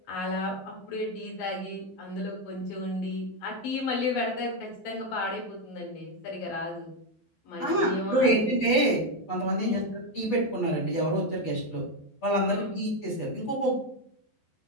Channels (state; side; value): late; right; 12 ms